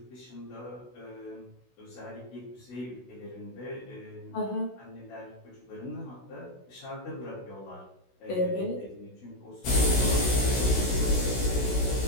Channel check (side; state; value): right; late; 16 ms